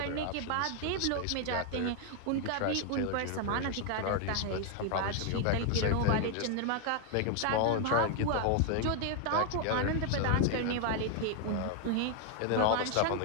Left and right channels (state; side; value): different; both; correlation 0.00